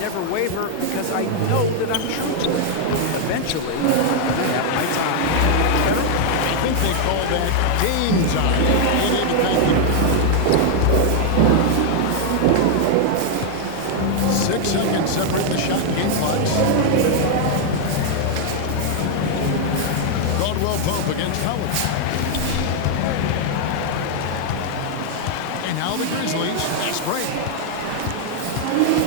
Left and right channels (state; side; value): different; both; correlation 0.00